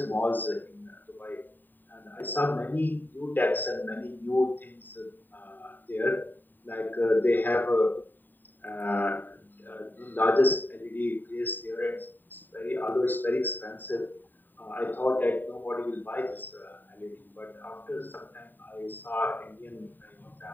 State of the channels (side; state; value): right; late; 0.090 ms